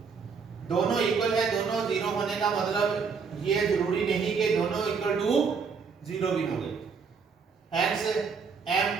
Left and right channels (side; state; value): left; quieter; 5.6 dB